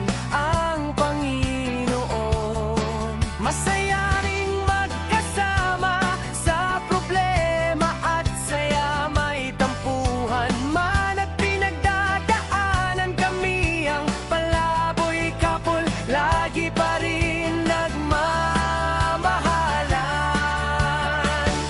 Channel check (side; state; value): both; identical; correlation 1.00